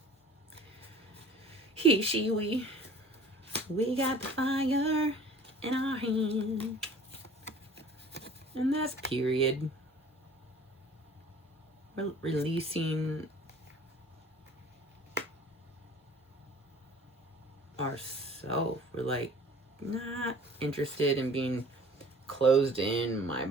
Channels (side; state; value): both; normal; correlation 0.48